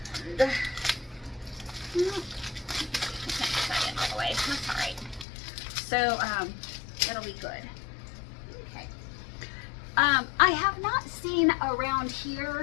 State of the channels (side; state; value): right; drops out; at 5.2 s